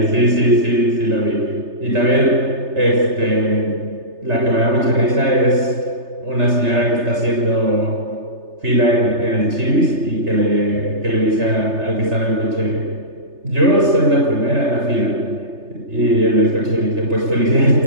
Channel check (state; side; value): late; left; 3.3 ms